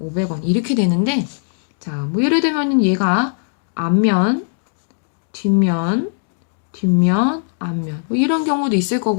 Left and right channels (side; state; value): right; silent; digital silence